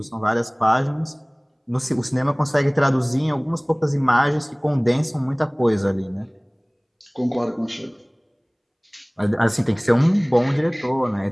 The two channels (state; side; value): identical; both; correlation 1.00